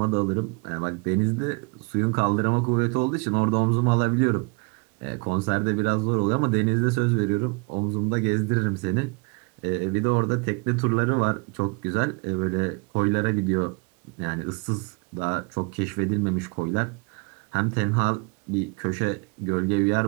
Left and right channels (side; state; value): left; quieter; 30.5 dB